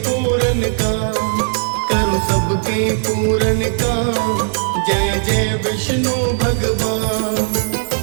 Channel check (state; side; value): silent; left; digital silence